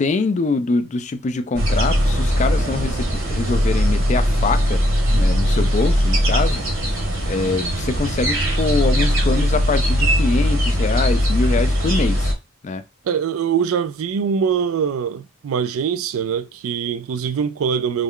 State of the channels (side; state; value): both; normal; correlation 0.64